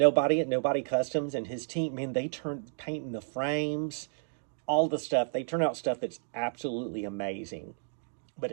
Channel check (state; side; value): silent; left; digital silence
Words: Customs and his team, man, they turn painting the frames, all the stuff. They turn out stuff that's absolutely amazing, but